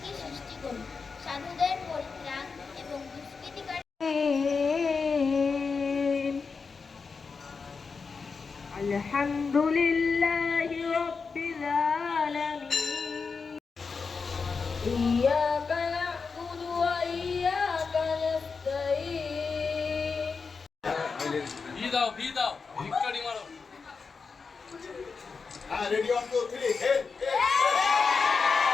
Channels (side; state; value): right; quieter; 5.0 dB